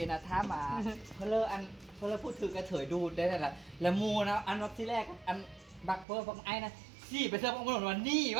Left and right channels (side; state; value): left; drops out; at 6.1 s